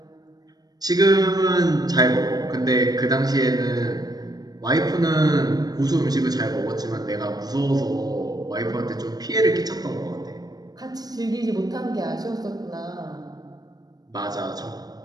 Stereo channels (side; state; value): left; late; 0.19 ms